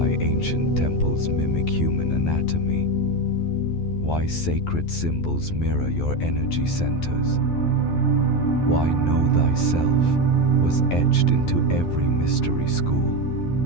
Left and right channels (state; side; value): late; right; 12 ms